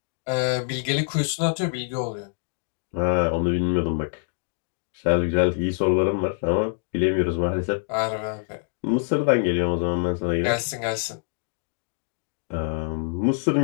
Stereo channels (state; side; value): silent; right; 62 dB below the other